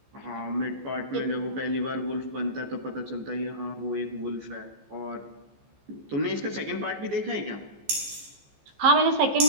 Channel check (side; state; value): left; late; 15 ms